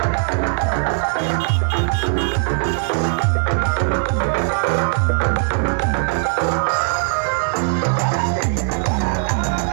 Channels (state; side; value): silent; left; digital silence